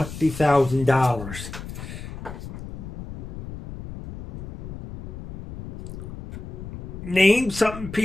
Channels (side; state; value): left; noise; rumble, 11 dB below the sound